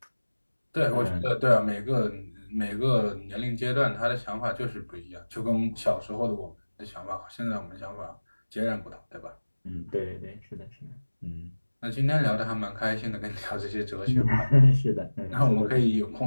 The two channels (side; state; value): both; inverted; correlation -1.00